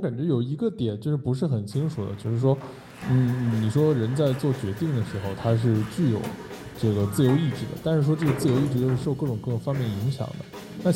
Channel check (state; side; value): identical; both; correlation 1.00